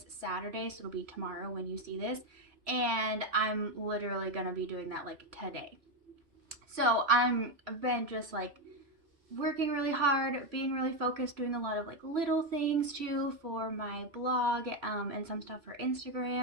Saturday. So it'll be tomorrow when you see this. And I'm literally gonna be doing that like today. So I've been just like working really hard, being really focused, doing a lot of like little things too for my blog, and some stuff for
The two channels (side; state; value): left; late; 3.0 ms